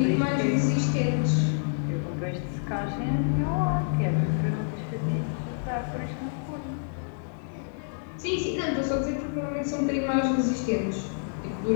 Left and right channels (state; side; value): silent; right; digital silence